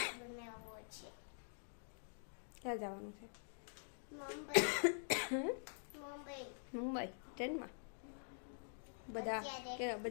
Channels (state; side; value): silent; right; digital silence